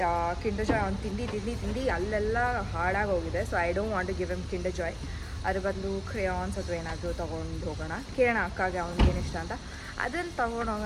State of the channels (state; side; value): identical; both; correlation 1.00